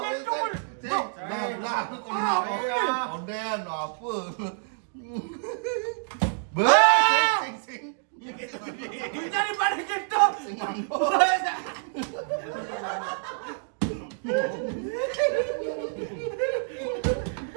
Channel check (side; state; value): left; silent; digital silence